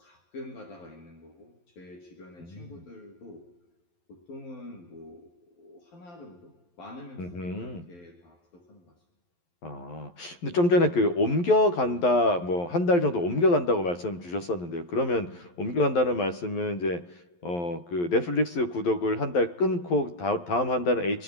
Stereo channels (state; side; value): late; right; 11 ms